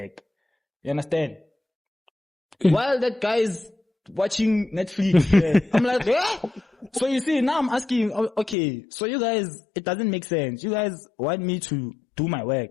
You understand? While that guy's watching Netflix. Yeah. I'm like, eh? So you see, now I'm asking, okay, so you guys, it doesn't make sense. You guys want me to do my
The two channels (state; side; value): drops out; right; at 8.6 s